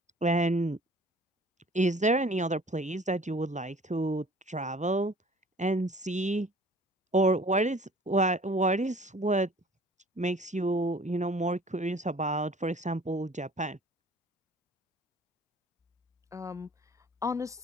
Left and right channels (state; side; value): normal; both; correlation 0.50